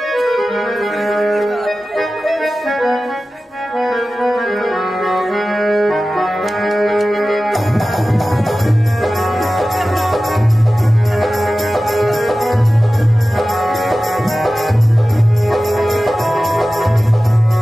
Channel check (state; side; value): normal; both; correlation 0.96